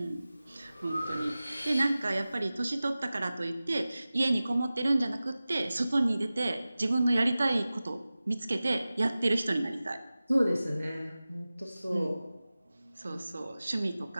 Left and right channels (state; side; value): inverted; both; correlation -0.96